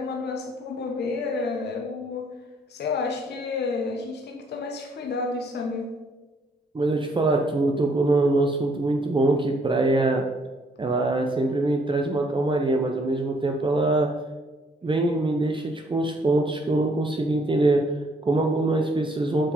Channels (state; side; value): normal; both; correlation 0.66